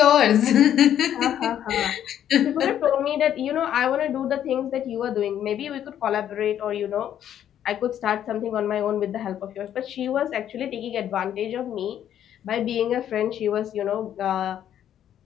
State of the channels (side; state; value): right; quieter; 10.4 dB